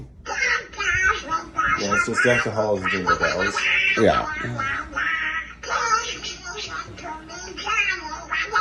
Yeah, it's just Deck the Halls and Jingle Bells. Yeah.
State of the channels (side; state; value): both; identical; correlation 1.00